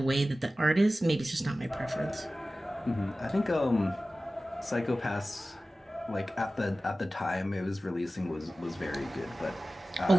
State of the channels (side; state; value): both; normal; correlation 0.96